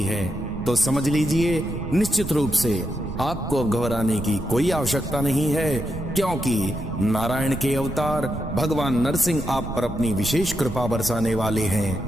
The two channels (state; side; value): noise; right; rumble, 9 dB below the sound